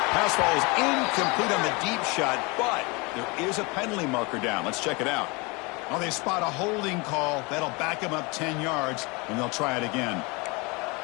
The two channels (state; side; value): quieter; right; 27.4 dB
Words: Pass ball is incomplete on the deep shot, but there is a penalty marker down. Let's check it out. Oh, they spot a holding call. That'll back him up 10 yards, and they'll try it again.